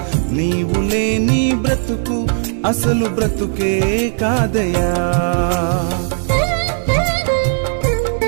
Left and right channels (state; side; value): silent; left; digital silence